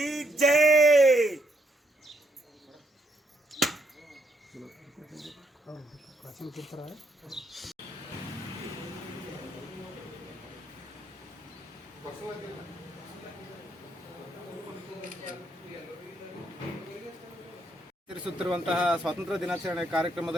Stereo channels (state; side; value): normal; both; correlation 0.74